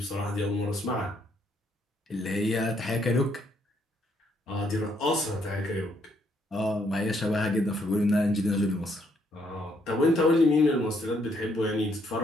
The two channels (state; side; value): normal; both; correlation 0.71